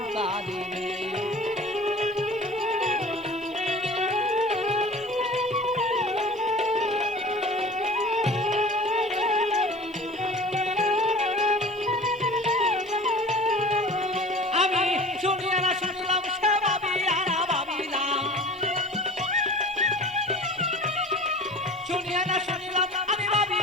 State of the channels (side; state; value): both; normal; correlation 0.41